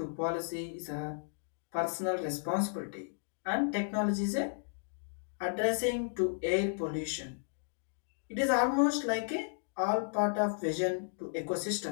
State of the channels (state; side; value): silent; right; digital silence